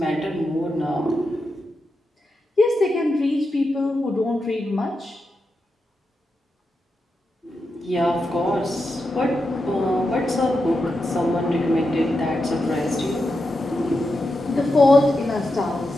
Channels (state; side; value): normal; both; correlation 0.88